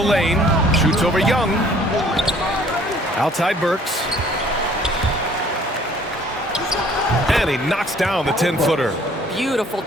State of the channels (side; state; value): both; normal; correlation 0.57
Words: lane. Shoots over Young. Outside Burks. And he knocks down the 10-footer. Beautiful